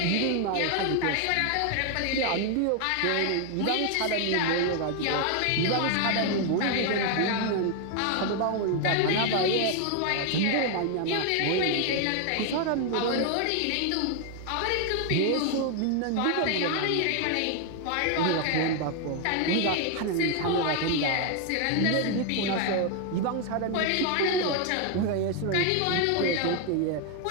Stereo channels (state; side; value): different; both; correlation 0.01